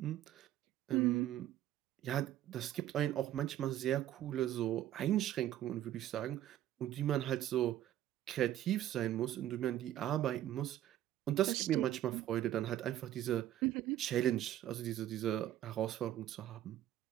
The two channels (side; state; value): left; quieter; 12.6 dB